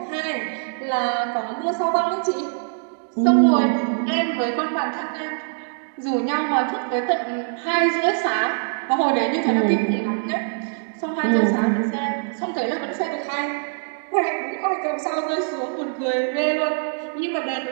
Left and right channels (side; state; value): left; silent; digital silence